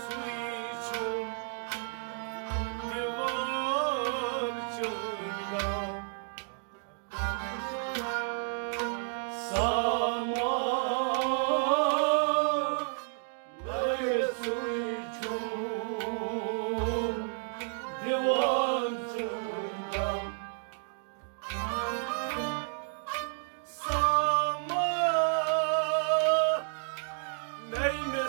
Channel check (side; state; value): left; silent; digital silence